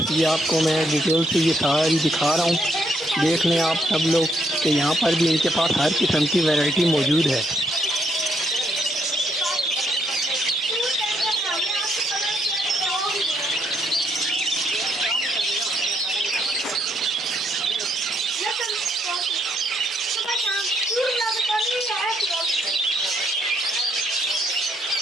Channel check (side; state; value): both; normal; correlation 0.73